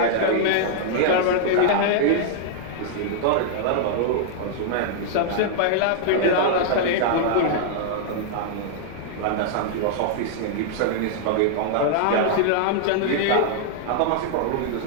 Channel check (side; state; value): both; different; correlation -0.01